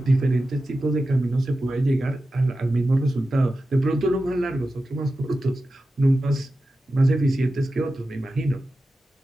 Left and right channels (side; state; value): both; normal; correlation 0.93